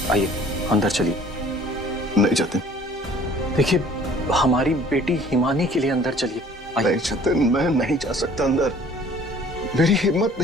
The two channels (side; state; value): both; normal; correlation 0.52